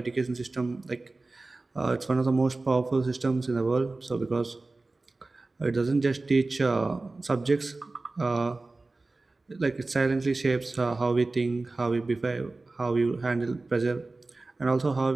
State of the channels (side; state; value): left; quieter; 3.3 dB